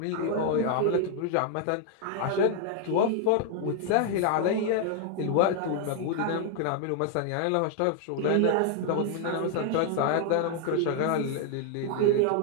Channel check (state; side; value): different; both; correlation 0.00